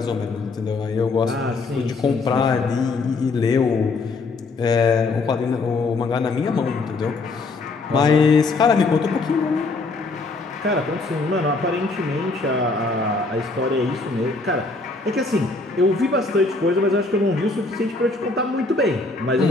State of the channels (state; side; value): quieter; right; 3.6 dB